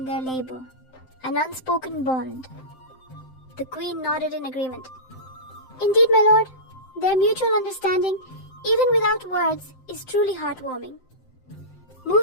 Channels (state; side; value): late; right; 7.7 ms